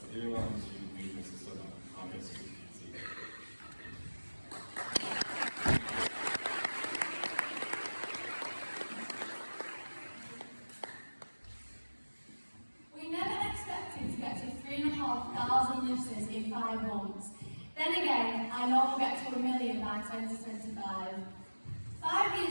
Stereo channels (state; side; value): inverted; both; correlation -1.00